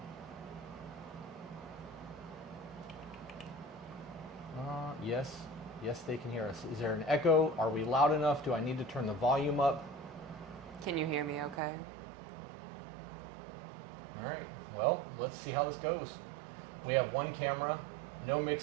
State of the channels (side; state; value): left; drops out; at 11.6 s